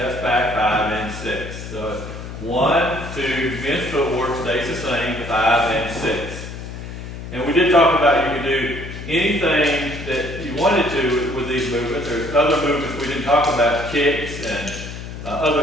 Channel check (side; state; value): left; noise; hum, 10 dB below the sound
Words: back, 5 and 6. So it's 1, 2, men's footwork stays the same, 5 and 6. And we did talk about you can do anything that you wanted to with these movements. There's other movements we didn't talk about, kicks and